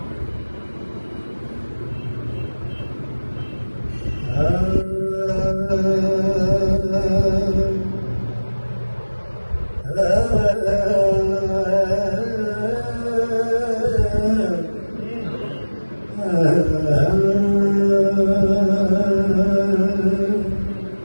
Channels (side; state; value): both; inverted; correlation -1.00